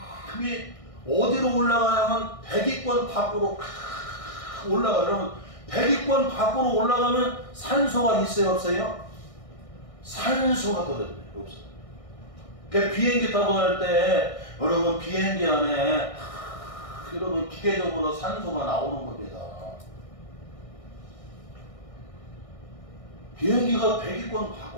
어디로 올라가냐면 백위권 밖으로 올라가요. 여러분 백위권 밖으로 올라가면 산소가 있어요 없어요? 산소가 떨어져요. 없어요. 그러니까 비행기 타고 갈 때 여러분 비행기 안에 여러분 기계적으로 산소가 나오는 겁니다. 비행기가 백위권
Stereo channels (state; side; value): late; right; 1.6 ms